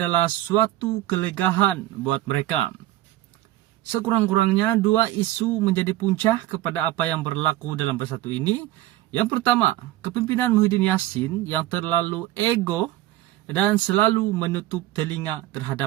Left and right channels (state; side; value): quieter; left; 15.3 dB